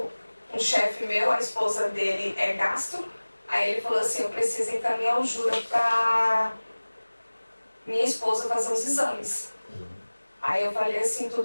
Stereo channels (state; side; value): inverted; both; correlation -1.00